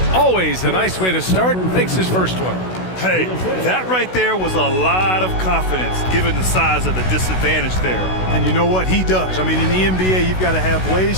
Always a nice way to start. Makes his first one. Hey, that right there was a lot of confidence given the size of the disadvantage there. And you know what? He does. I mean, in the NBA, you've got to have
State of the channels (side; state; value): right; late; 16 ms